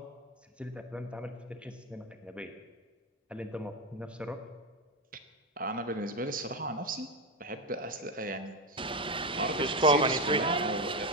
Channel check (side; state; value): both; normal; correlation 0.11